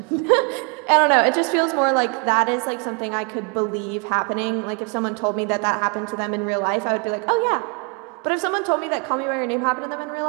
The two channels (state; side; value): quieter; left; 34.9 dB